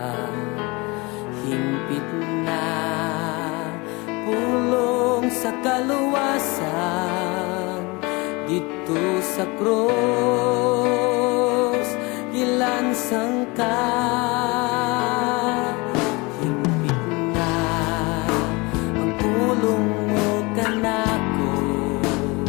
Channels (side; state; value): right; quieter; 25.9 dB